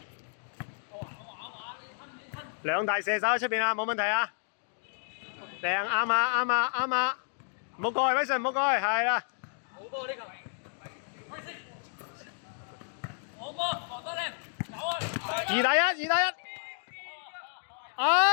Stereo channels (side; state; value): right; silent; 57 dB below the other